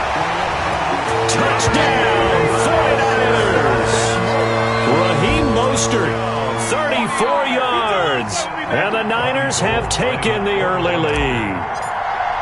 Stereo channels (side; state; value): both; identical; correlation 1.00